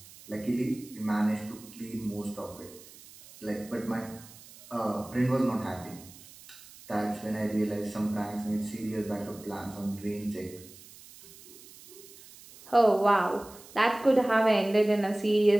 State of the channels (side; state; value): right; noise; hiss, 20 dB below the sound